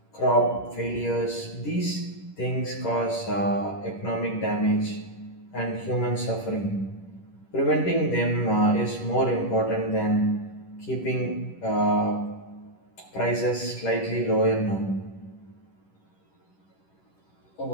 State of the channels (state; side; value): late; right; 10 ms